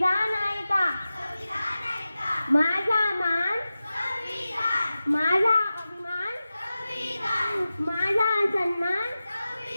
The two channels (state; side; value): inverted; both; correlation -0.95